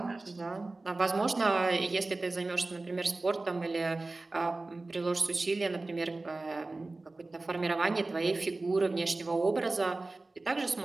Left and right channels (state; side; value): quieter; left; 3.2 dB